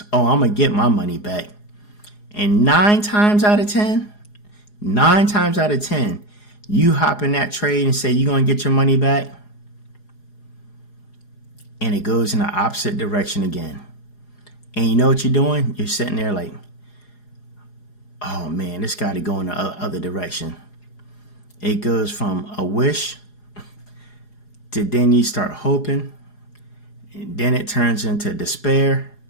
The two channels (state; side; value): late; right; 4.8 ms